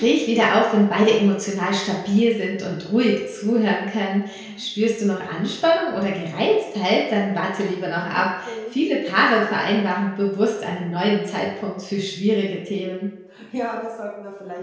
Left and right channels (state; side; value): identical; both; correlation 1.00